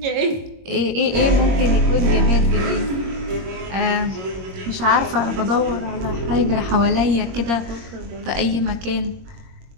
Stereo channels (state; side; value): late; left; 21 ms